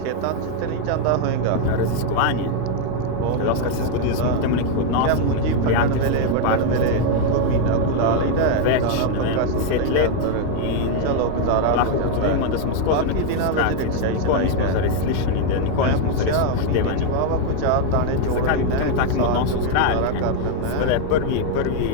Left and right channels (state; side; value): different; both; correlation 0.00